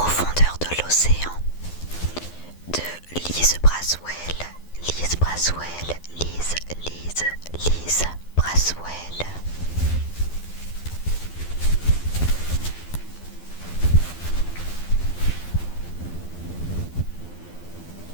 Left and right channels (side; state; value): right; late; 12 ms